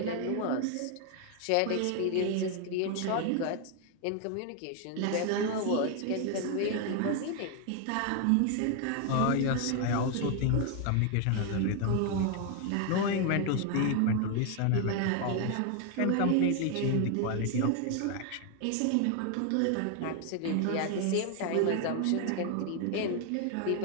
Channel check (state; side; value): different; both; correlation 0.00